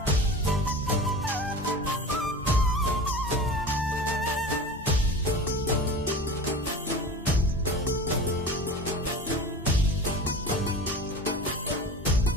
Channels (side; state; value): both; normal; correlation 0.34